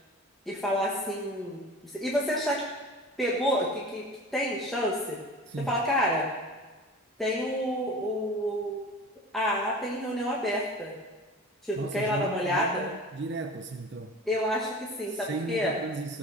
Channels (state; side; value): normal; both; correlation 0.38